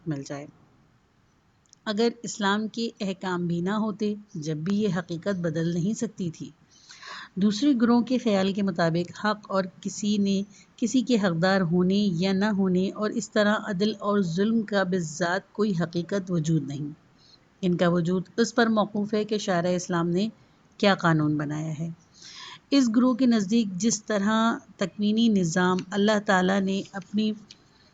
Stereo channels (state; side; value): identical; both; correlation 1.00